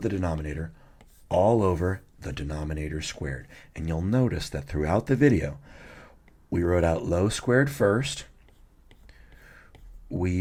the denominator all over the denominator squared. And you'll notice that throughout the video, we wrote out low squared first. We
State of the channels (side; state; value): both; identical; correlation 1.00